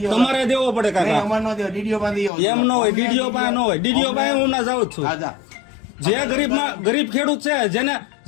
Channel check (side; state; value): right; drops out; at 2.3 s